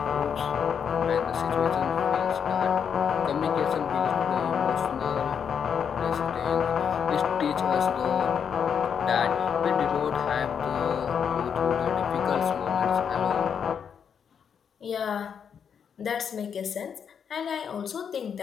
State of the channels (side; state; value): right; quieter; 7.4 dB